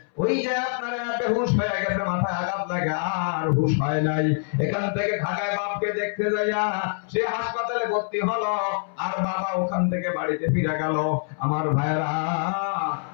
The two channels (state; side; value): silent; right; 62 dB below the other